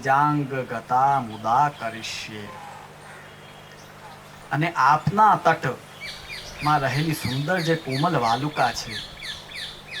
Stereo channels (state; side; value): identical; both; correlation 1.00